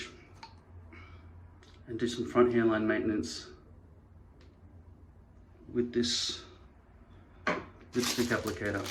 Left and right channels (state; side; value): identical; both; correlation 1.00